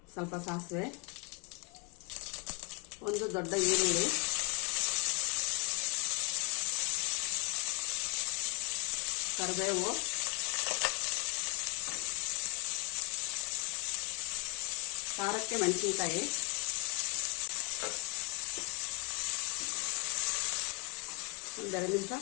ಸ್ವಲ್ಪ ಸಾಸಿವೆ, ಒಂದು ದೊಡ್ಡ ಈರುಳ್ಳಿ, ಕರಿಬೇವು, ಖಾರಕ್ಕೆ ಮೆಣಸಿನ್ಕಾಯಿ, ಒಂದು 2 ನಿಮಿಷ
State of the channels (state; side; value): quieter; right; 24.0 dB